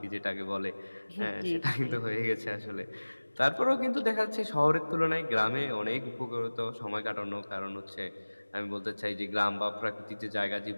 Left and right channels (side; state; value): both; inverted; correlation -1.00